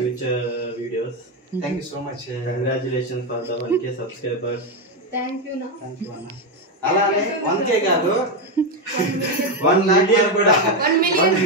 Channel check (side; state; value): both; normal; correlation 0.08